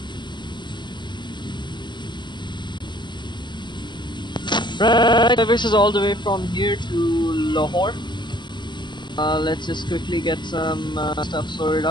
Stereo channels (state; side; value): late; right; 0.22 ms